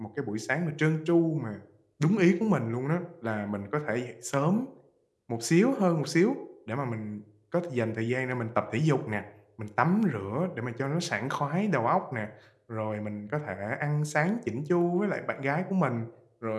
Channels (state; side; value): identical; both; correlation 1.00